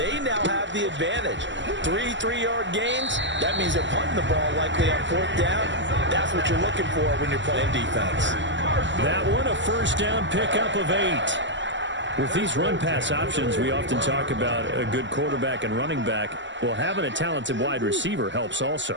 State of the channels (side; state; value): left; late; 0.54 ms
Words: now have the advantage. 3 3-yard gains, that means they're punting the ball likely on 4th down. That's what you're looking for when you're playing defense. That one a first down pickup of 8. With these run-pass options, we often talk about a good quarterback and running back. Well, having a talented wide receiver helps also.